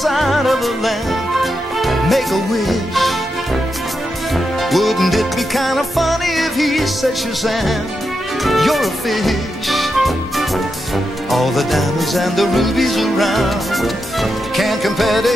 of a lamp? Make a wish. Wouldn't it be kind of funny if he said, Shazam, you're a fish? All the diamonds and the rubies around can't compare to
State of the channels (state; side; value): normal; both; correlation 0.86